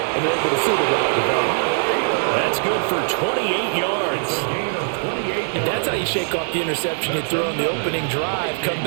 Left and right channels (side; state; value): left; silent; digital silence